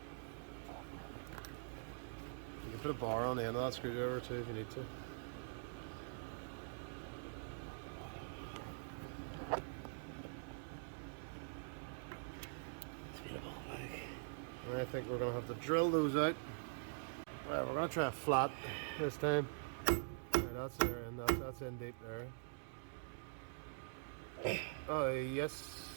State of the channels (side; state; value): left; silent; digital silence